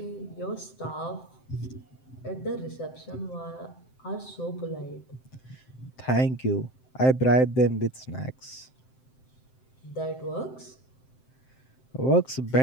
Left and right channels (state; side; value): late; right; 7.7 ms